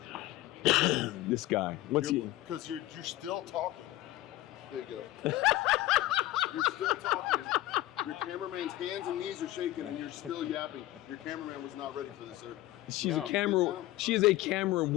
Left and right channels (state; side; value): quieter; right; 16.1 dB